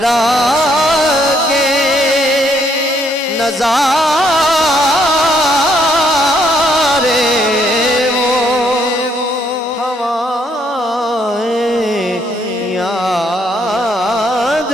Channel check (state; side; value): normal; both; correlation 0.70